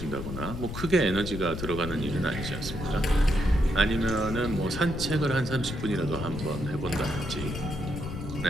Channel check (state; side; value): noise; left; rumble, 7 dB below the sound